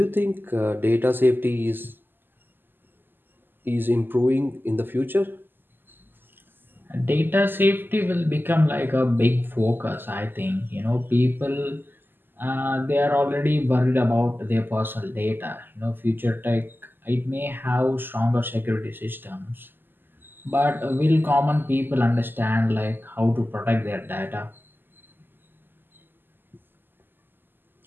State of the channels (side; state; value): left; late; 0.094 ms